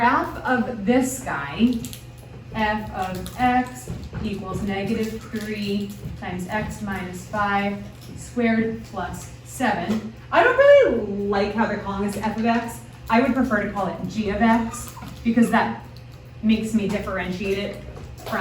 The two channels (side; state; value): both; identical; correlation 1.00